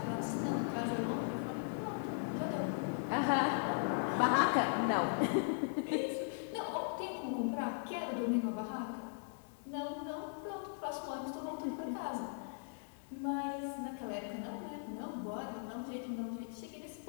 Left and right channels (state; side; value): silent; right; digital silence